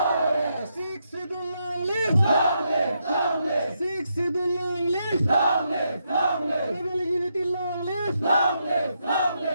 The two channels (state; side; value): inverted; both; correlation -0.80